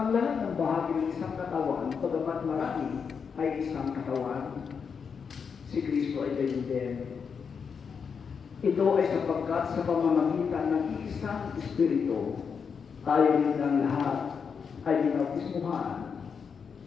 Ang lahat ng bahagi ng isang katawan, pagamat marami, ay isang katawan. Si Kristo ay gayon din. Ito ay sapagkat sa pamamagitan ng isang Espiritu, tayo rin ng lahat ay binautismuhan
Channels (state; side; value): quieter; right; 6.2 dB